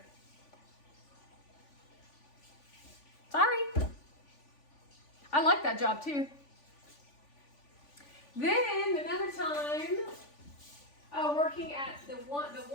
Sorry. I like that job too. Then another time, working at the one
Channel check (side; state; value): right; late; 3.5 ms